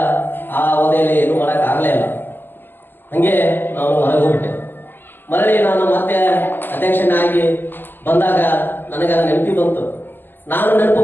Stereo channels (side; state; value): right; late; 0.097 ms